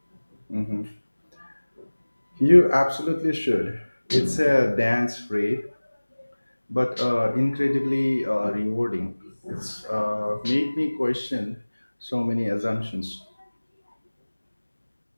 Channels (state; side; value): inverted; both; correlation -1.00